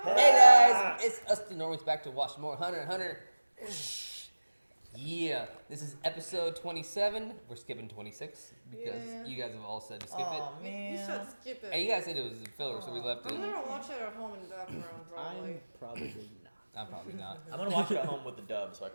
guys, it's us the Normies back to watch more Hunter x Hunter. Yeah, this is episode 27. We're skipping 26 because you guys have all said to skip it. Man. You should skip it. Hey, you guys said it was a filler, so we left it. I'm gonna watch it at home in the background, probably. I'm probably not. I'm probably not. I'm gonna watch it at home with the dub so I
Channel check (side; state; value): both; inverted; correlation -1.00